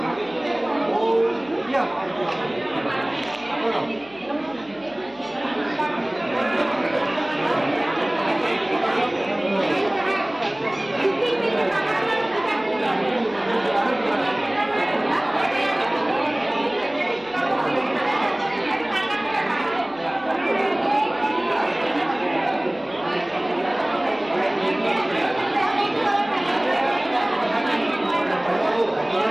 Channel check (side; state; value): left; noise; hum, 27 dB below the sound